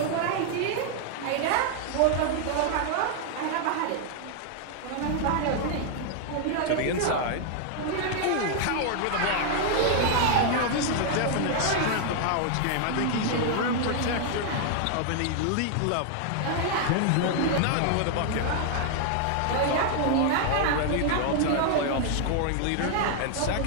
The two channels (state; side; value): different; both; correlation 0.00